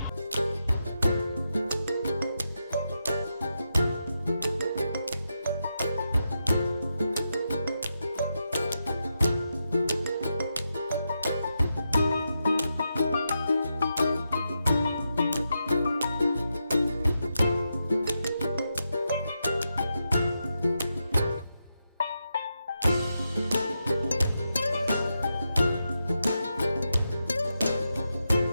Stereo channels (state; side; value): inverted; both; correlation -0.86